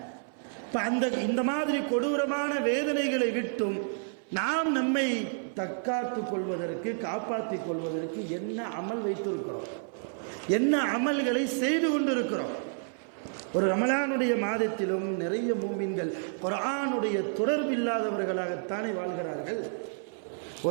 இந்த மாதிரி கொடூரமான வேதனைகளை விட்டும் நாம் நம்மை தற்காத்துக் கொள்வதற்கு, காப்பாற்றிக் கொள்வதற்கு என்ன அமல் வைத்திருக்கிறோம், என்ன அமல்களை செய்து கொண்டிருக்கிறோம். ஒரு ரமலானுடைய மாதத்திலும் நிறைய மூமின்கள் குர்ஆனுடைய தொடர்பு இல்லாதவர்களாகத்தானே வாழ்கிறார்கள்.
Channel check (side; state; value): left; silent; 58 dB below the other